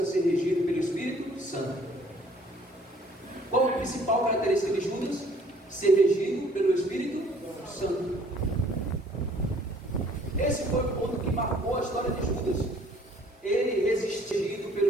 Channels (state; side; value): normal; both; correlation 0.58